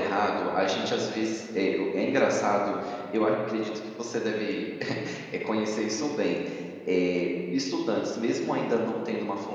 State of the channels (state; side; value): identical; both; correlation 1.00